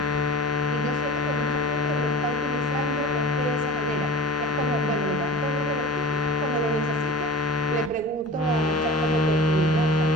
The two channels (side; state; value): both; normal; correlation 0.36